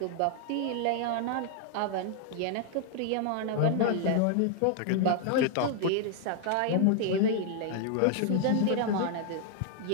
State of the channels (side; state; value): both; different; correlation 0.00